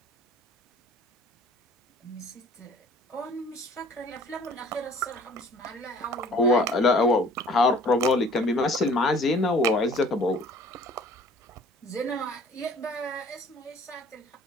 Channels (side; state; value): both; normal; correlation 0.52